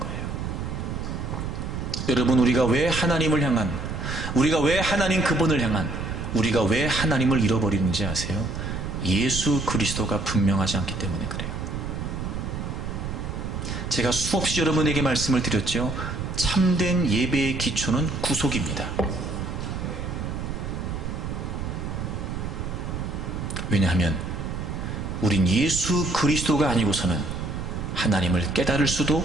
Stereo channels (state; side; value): noise; right; rumble, 4 dB below the sound